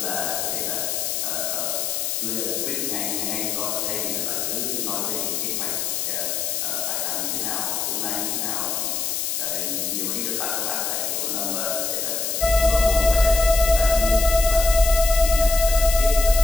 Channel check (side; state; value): left; noise; hiss, 1 dB below the sound